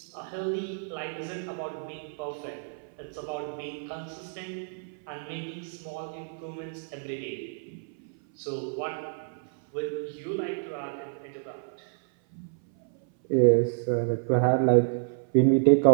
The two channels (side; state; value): left; silent; 57 dB below the other